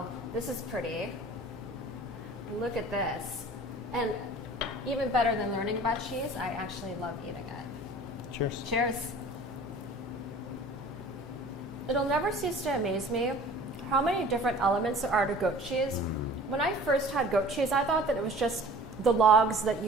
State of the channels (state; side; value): noise; left; hum, 20 dB below the sound